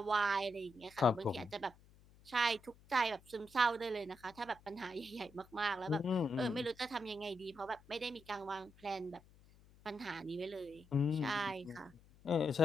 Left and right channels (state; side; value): noise; left; hum, 25 dB below the sound